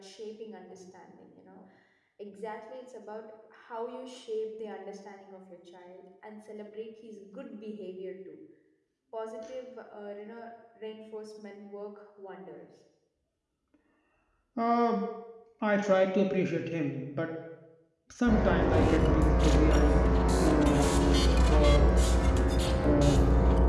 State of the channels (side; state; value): both; identical; correlation 1.00